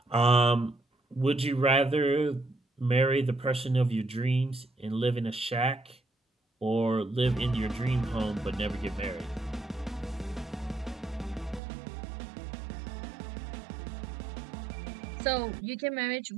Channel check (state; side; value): drops out; left; at 11.6 s